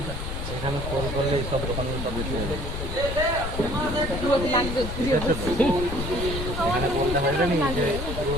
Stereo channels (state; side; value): noise; left; rumble, 5 dB below the sound